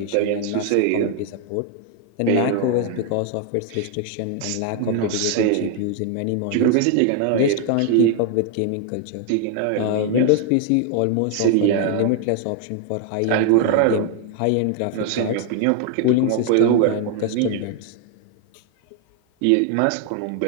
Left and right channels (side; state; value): both; different; correlation 0.00